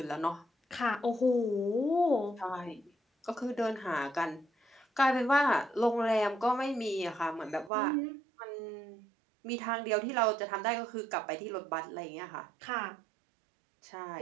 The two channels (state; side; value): drops out; left; at 7.7 s